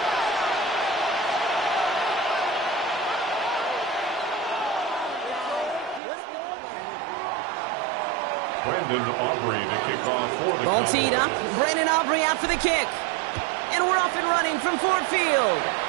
Brandon Aubrey to kick off for the Ball teed up. Brandon Aubrey out for the kick. And we're off and running from Ford Field.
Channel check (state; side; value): drops out; left; at 6.0 s